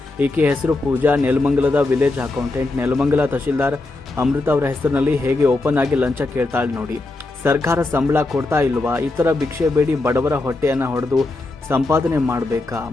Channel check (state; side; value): quieter; right; 3.1 dB